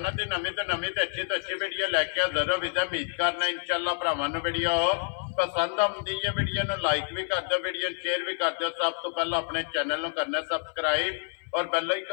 दी नवीं तो अच्छी वीडियो लैके हाज़र हो विदा उम्मीद करना इंशाअल्लाह भरावां नूं वीडियो पसंद आउंदी है। वीडियो नूं लाइक भी कर दो, वीडियो शेयर भी कर दो। सब तो पहला अपने चैनल नूं करना सबसक्राइब और बेल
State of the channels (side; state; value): right; silent; 56 dB below the other